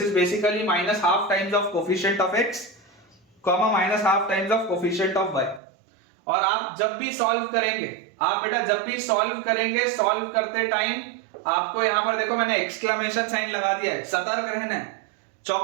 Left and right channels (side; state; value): left; drops out; at 5.6 s